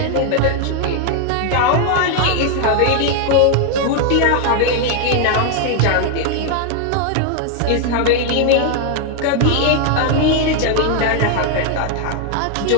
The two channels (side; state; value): both; different; correlation 0.00